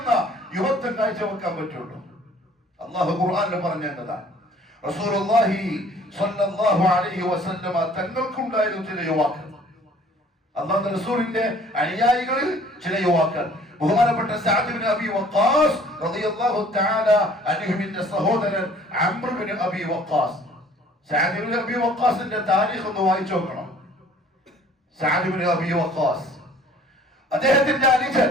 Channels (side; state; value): both; normal; correlation 0.54